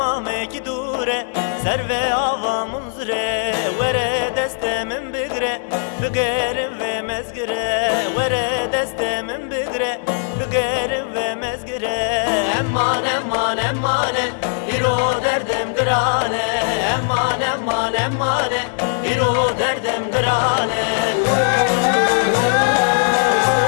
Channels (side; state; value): right; silent; 65 dB below the other